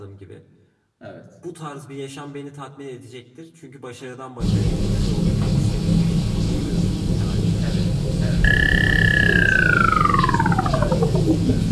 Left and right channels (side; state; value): both; identical; correlation 1.00